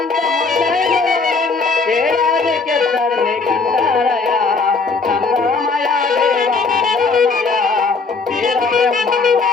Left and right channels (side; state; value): right; quieter; 4.4 dB